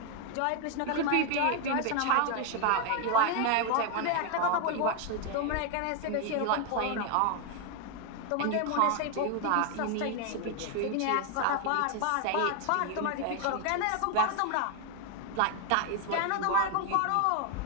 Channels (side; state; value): both; different; correlation 0.01